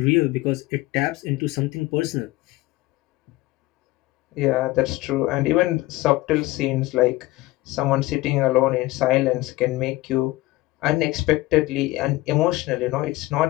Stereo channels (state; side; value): quieter; right; 19.0 dB